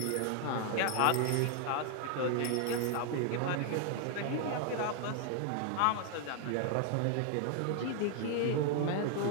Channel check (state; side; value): different; both; correlation 0.00